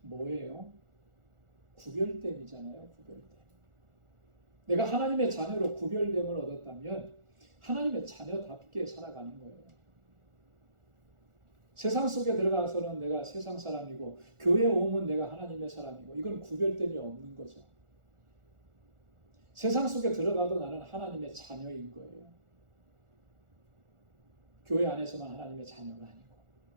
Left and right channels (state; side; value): late; left; 1.4 ms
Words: 뭐예요? 구별됨이잖아요. 구별됨. 내가 하나님의 자녀로 구별됨을 얻었다면 하나님의 자녀답게 살아가는 거예요. 세상 속에 들어가서는 내가 세상 사람이고 교회에 오면 내가 하나님의 사람이고 이건 구별됨이 없는 거죠. 세상 속에 들어가도 나는 하나님의 자녀인 거예요. 교회 안에서만 하나님의 자녀가 아니고